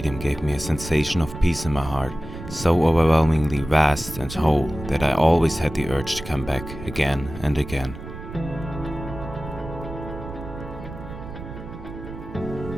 gave me a sensation of peace in my heart, so overwhelmingly vast and whole that I always had the urge to come back again and again.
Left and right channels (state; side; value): noise; right; rumble, 11 dB below the sound